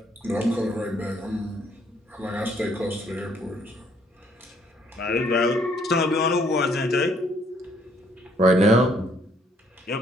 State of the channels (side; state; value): both; normal; correlation 0.66